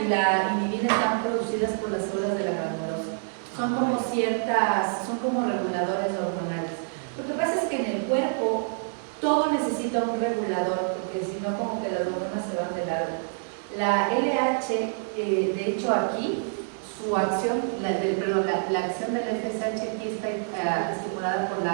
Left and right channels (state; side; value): silent; left; 60 dB below the other